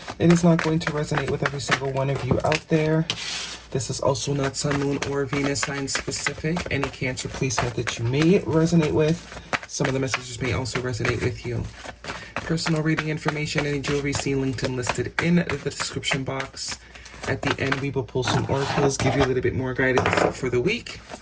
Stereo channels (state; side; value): identical; both; correlation 1.00